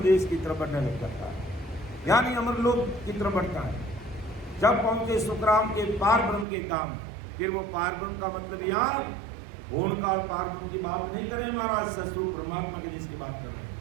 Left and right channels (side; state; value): left; drops out; at 6.5 s